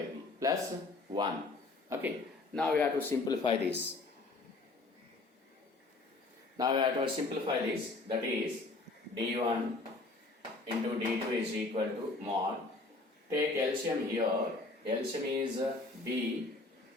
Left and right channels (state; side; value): quieter; right; 3.3 dB